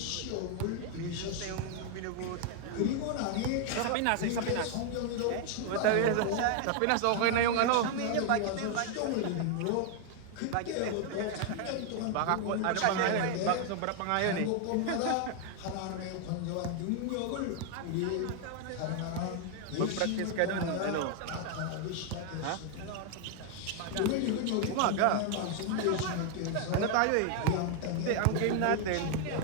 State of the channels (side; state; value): both; different; correlation 0.00